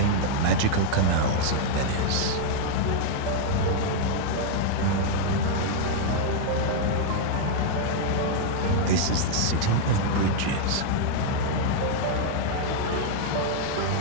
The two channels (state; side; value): different; both; correlation -0.01